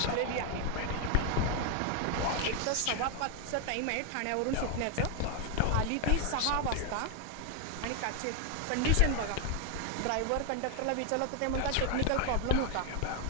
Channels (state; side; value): different; both; correlation 0.01